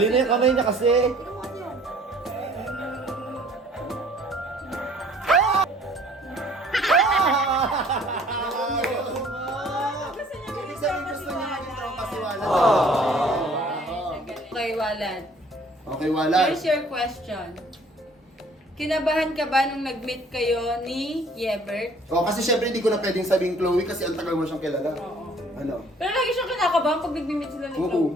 na yung kamay niya kasi. Gusto niya Ibig maging sabihin tropa si gusto niya maging tropa si Walad. Walad. Okay, Walad. Okay, Walad. Here's your question. Kinabahan ka ba nung nag-meet kayo ni Yebert? Oh, kasi syempre hindi ko na pwedeng sabihin Chloe kasi ang tagal mo siyang kilala. Oo. Ano? Pero lagi siyang kinakabahan pag nag-meet sila ni Oo,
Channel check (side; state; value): both; normal; correlation 0.56